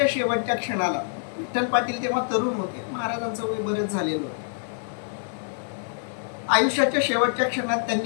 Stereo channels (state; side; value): silent; right; digital silence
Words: शेवटच्या क्षणाला विठ्ठल पाटील तेव्हा तरुण होते, महाराजांचं वय बरेच झालेलं होतं. आयुष्याच्या शेवटच्या क्षणात